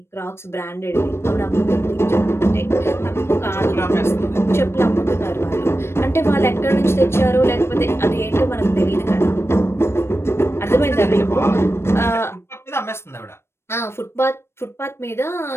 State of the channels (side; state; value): right; late; 0.12 ms